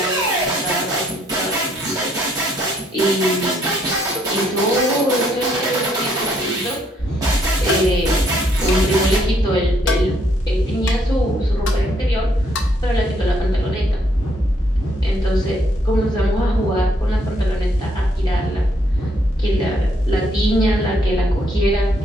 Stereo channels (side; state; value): both; normal; correlation 0.70